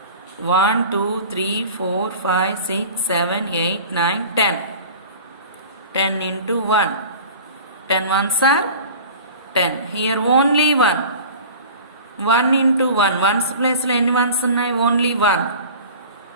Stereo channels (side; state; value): both; inverted; correlation -0.40